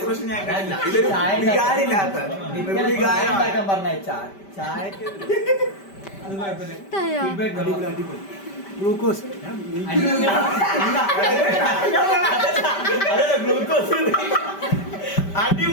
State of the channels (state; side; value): late; right; 5.1 ms